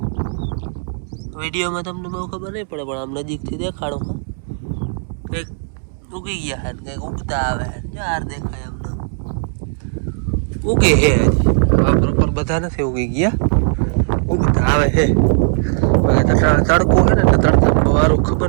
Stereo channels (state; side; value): silent; left; digital silence